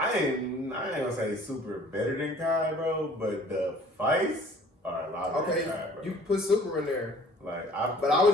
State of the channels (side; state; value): both; normal; correlation 0.52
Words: ain't gonna say super better than Kai, bro. But the fights are a lot better than Kai, bro. You put Super in there. Like, but I